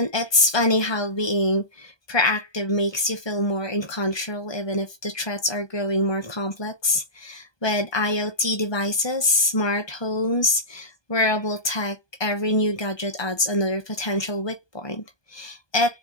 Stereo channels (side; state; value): right; late; 1.2 ms